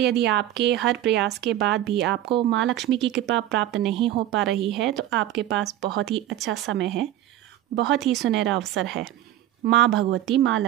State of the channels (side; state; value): left; quieter; 12.9 dB